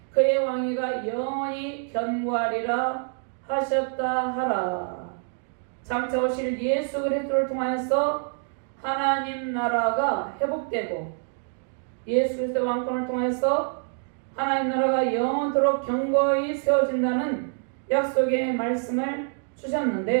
그의 왕위가 영원히 견고하리라 하셨다 하라. 장차 오실 예수 그리스도를 통하여서 하나님 나라가 회복되고 예수 그리스도의 왕권을 통해서 하나님 나라가 영원토록 견고히 세워진다는 약속의 말씀을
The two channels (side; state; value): left; silent; 56 dB below the other